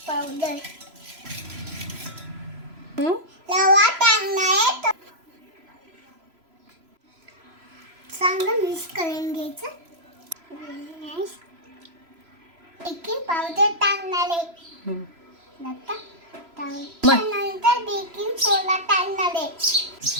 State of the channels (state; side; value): late; left; 3.0 ms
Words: रवा टाकणार. चांगलं मिक्स करून घ्यायचं. बेकिंग पावडर टाकणार आहे. त्यानंतर बेकिंग सोडा टाकणार आहे.